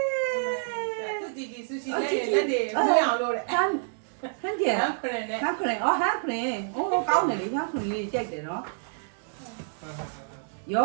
း သူကြည့်ကြည့်ဆူရှီလက်တွေမွေးအောင်လို့တဲ့ ဟန်ကျန် ဟမ်ဖရင်နဲ့ ဟန်ခရင်အော်ဟန်ခရင်အိုးကောင်းတယ်လေဟန်ခရင်လေးကြိုက်တယ်နော်ရေ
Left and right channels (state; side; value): silent; left; digital silence